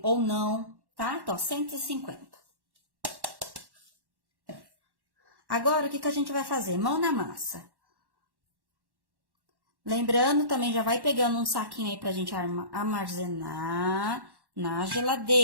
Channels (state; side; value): late; left; 1.1 ms